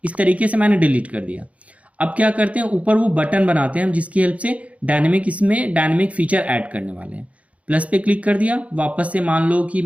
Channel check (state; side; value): late; left; 0.066 ms